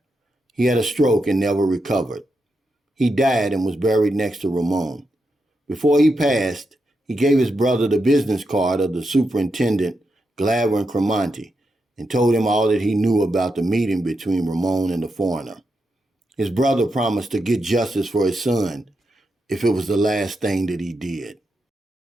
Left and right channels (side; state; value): both; normal; correlation 0.85